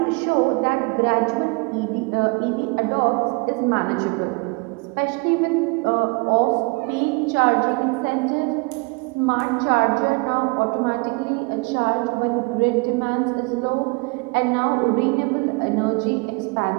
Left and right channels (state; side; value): quieter; left; 29.9 dB